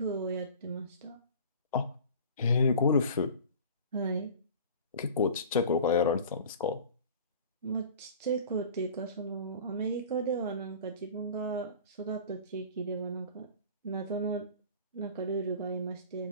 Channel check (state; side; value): inverted; both; correlation -0.41